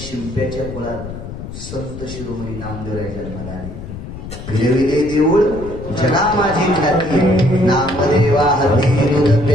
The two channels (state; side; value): noise; left; rumble, 11 dB below the sound